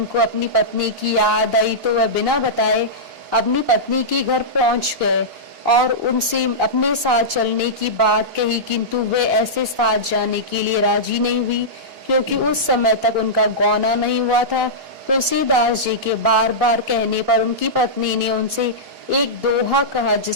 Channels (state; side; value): late; left; 2.9 ms